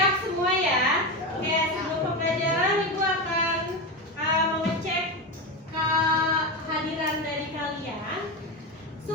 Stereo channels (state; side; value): normal; both; correlation 0.17